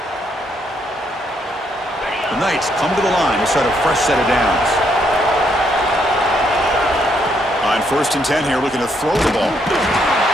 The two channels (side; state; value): both; normal; correlation 0.73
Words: The Knights come to the line to start a fresh set of downs. On 1st and 10 here, looking to throw the ball.